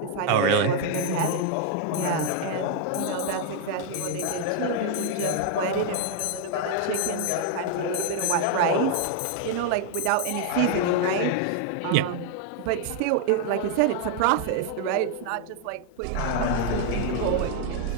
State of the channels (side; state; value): both; different; correlation 0.00